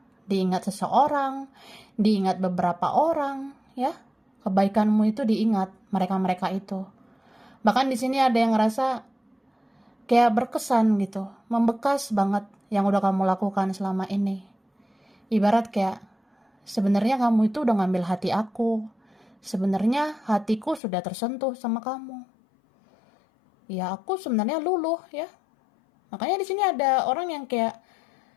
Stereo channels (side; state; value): right; drops out; at 20.8 s